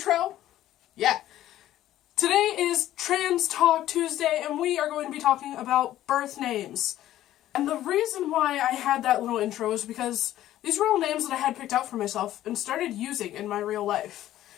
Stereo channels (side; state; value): right; quieter; 13.3 dB